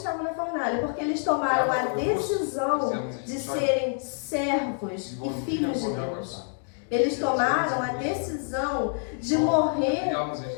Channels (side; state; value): right; silent; 58 dB below the other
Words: na fornalha? Porque eles tomaram a decisão de serem servos e filhos de Deus. Eles tomaram a decisão de morrer